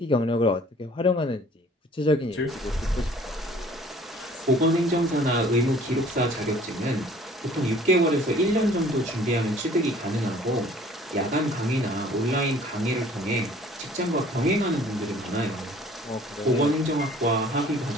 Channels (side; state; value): both; normal; correlation 0.53